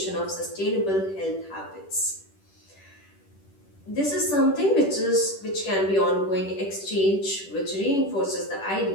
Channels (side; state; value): right; late; 10 ms